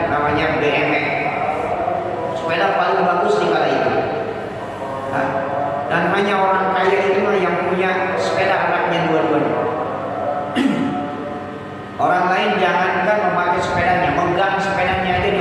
namanya BMX, sepeda paling bagus di kala itu. Nah, dan hanya orang kaya itu yang punya sepeda anaknya dua-duanya. Orang lain jangankan memakai sepedanya, megang sepedanya aja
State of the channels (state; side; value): identical; both; correlation 1.00